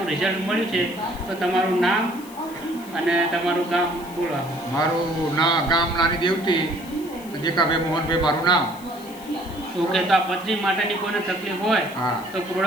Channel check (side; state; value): left; noise; hiss, 20 dB below the sound